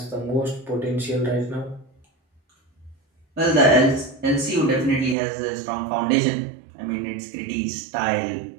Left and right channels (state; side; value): drops out; left; at 5.2 s